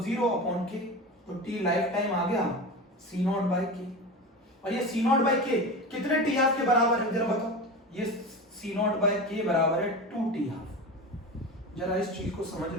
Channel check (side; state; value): both; normal; correlation 0.27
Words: 0/K, तो T लाइफ टाइम आ गया C0/K। और ये C0/K कितने टी हाफ के बराबर है जरा बताओ? ये C0/K बराबर है 2 टी हाफ। जरा इस चीज को समझ